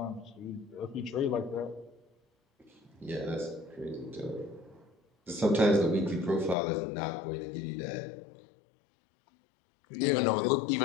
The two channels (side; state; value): right; drops out; at 6.6 s